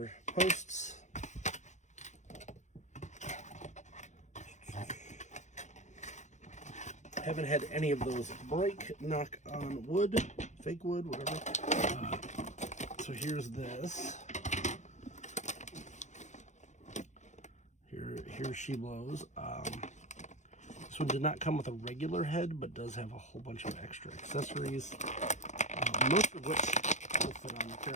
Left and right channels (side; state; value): right; late; 0.34 ms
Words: posts. Haven't had any of those break, knock on wood, fake wood, whatever. So here's this. Here she blows. This one did not come with a regular head, but does have a whole bunch of extra accessories, most of which will fit on the